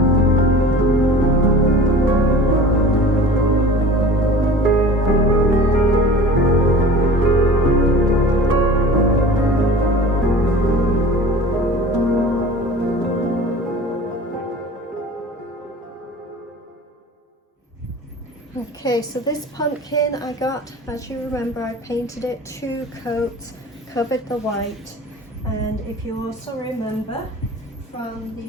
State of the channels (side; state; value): both; normal; correlation 0.40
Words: Okay, so this pumpkin I got, as you remember, I painted it 2 coats, covered the white, and if you also remember from